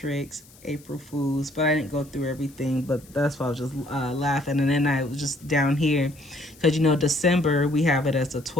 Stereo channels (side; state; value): left; noise; hiss, 25 dB below the sound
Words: April Fools. But I didn't go through everything, but that's why I was just laughing. And then I was just down here, because you know, December, we have it as the